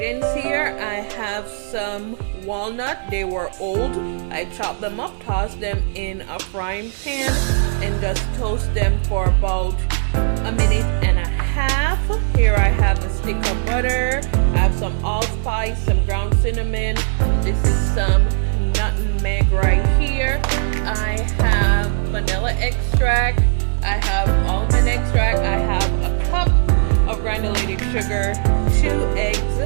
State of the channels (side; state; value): left; silent; digital silence